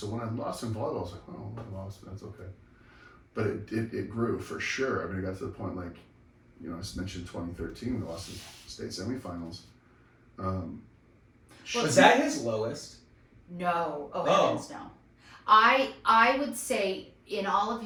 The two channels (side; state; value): both; identical; correlation 1.00